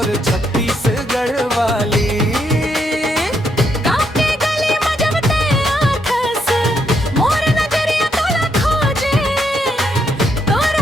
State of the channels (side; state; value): both; normal; correlation 0.76